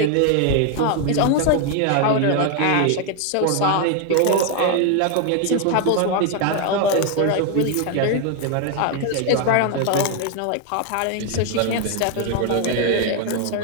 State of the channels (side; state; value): both; different; correlation 0.01